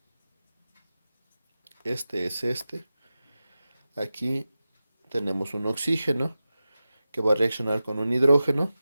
Este es este. Aquí tenemos un oxígeno que va a reaccionar con un hidrógeno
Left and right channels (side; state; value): both; inverted; correlation -0.93